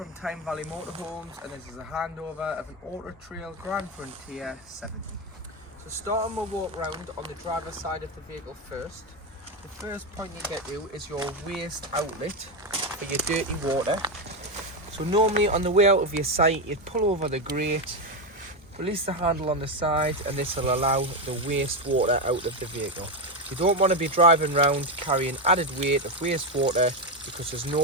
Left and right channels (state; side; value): normal; both; correlation 0.09